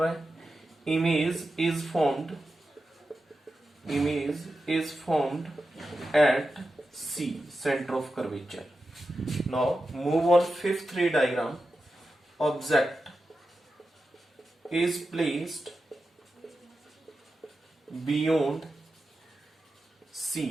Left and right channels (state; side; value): normal; both; correlation 0.91